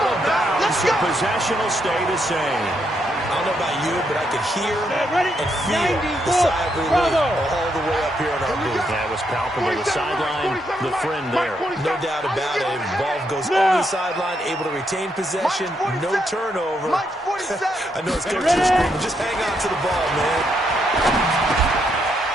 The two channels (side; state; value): both; normal; correlation 0.78